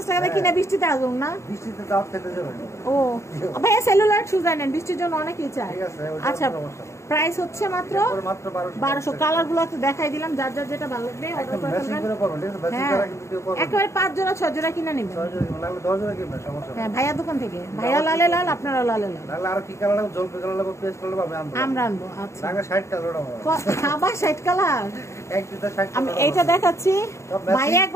টাকা দিয়ে কিনে বৃষ্টিতে আসুন না। ও ভাইয়া সেলুলার শুজ আনেন, বৃষ্টির জন্য অনেকেই চায়। আচ্ছা, প্রাইস হচ্ছে মাত্র 1200। কালার গুলো তো দেখাই দিলাম, যার যার যেটা ভালো লাগবে অর্ডার করে ফেলবেন। হ্যাঁ, একেবারে 5 জোড়া 6 জোড়া কিনে নেবেন। হ্যাঁ, ভাইয়া দোকান থেকে। ভাইয়া লালে লাল, আপনারা লালে লাল। আমরা আনবো। আচ্ছা, আবার 60 কালার। আমি এইটা দেখাচ্ছি। ভাইয়া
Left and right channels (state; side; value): late; right; 0.14 ms